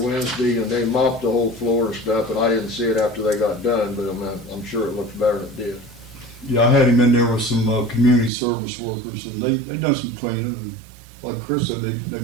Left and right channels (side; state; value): left; drops out; at 8.3 s